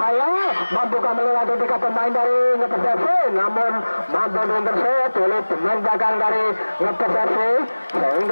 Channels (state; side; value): inverted; both; correlation -1.00